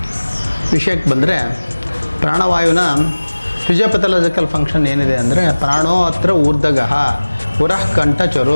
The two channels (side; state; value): both; inverted; correlation -1.00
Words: ವಿಷಯಕ್ಕೆ ಬಂದರೆ, ಪ್ರಾಣವಾಯುವಿನ ಫಿಸಿಯೋಪಥಾಲಜಿಕಲ್ ಫಂಕ್ಷನ್ ಏನಿದೆ ಅಂದರೆ, ಪ್ರಾಣೋ ಅತ್ರ ಊರ್ಧಗಃ ಪುರಃ